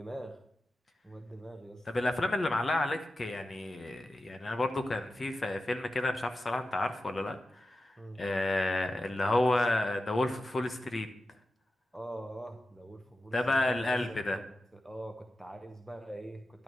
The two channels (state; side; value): normal; both; correlation 0.92